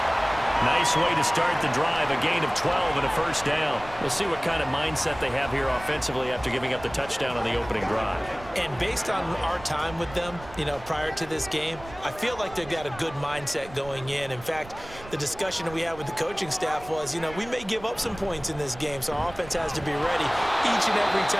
Nice way to start the drive, a gain of 12 and a first down. We'll see what kind of mindset they have here offensively after giving up the touchdown on the opening drive. And based on our time with them, prior to this game, I feel like they've got a good mindset going in. In fact, the discussion that we had with the coaching staff was, we may give up some points in this game, so our offense has to be ready each and every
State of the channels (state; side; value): noise; right; rumble, 17 dB below the sound